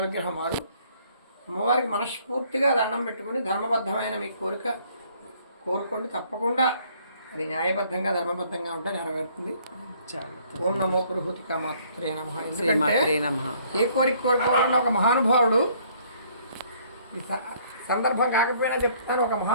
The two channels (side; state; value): both; inverted; correlation -0.62